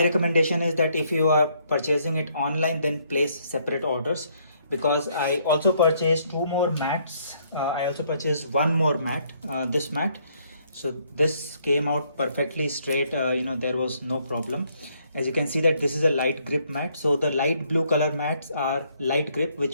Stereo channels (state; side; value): inverted; both; correlation -0.69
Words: recommendation is that if you are purchasing it online, then place separate orders, because I also purchased two more mats. I also purchased one more mat, this mat. So this came out perfectly straight, there was no problem. As you can see that this is a light grip mat. So the light blue color mats are light grip,